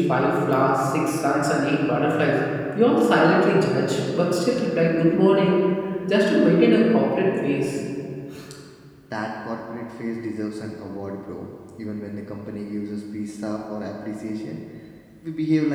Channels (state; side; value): identical; both; correlation 1.00